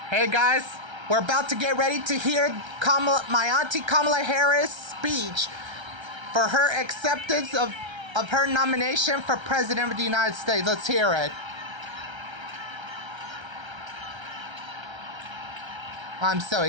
Hey guys, we're about to get ready to hear my auntie Kamala Harris' speech for her acceptance of her nomination for President of the United States. Let's hear it. I'm so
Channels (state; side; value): late; left; 1.3 ms